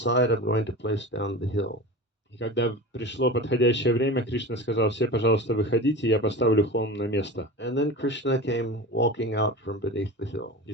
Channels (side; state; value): both; normal; correlation 0.31